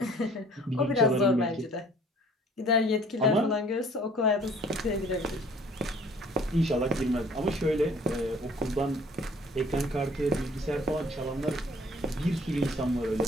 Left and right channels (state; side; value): normal; both; correlation 0.55